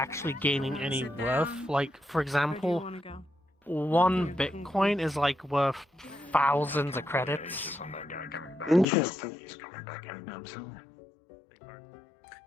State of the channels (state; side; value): drops out; right; at 8.8 s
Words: gaining any worth. Like, for example, one Bitcoin is like worth thousands of credits. Interesting.